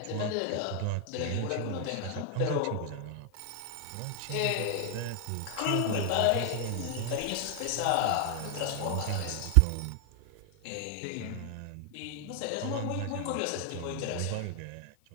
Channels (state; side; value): different; both; correlation 0.00